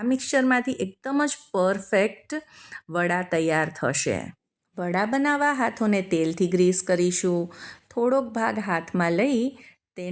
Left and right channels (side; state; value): both; identical; correlation 1.00